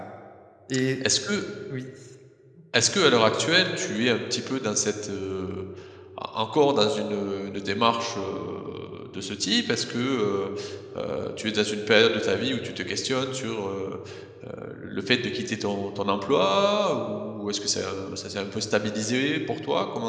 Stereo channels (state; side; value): identical; both; correlation 1.00